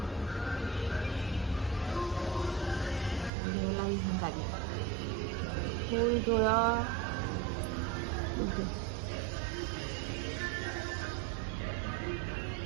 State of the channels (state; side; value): drops out; left; at 3.3 s